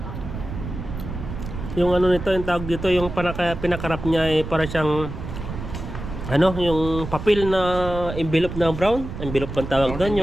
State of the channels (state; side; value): noise; right; rumble, 8 dB below the sound